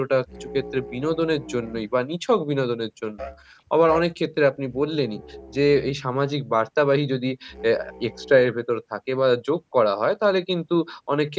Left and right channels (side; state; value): both; identical; correlation 1.00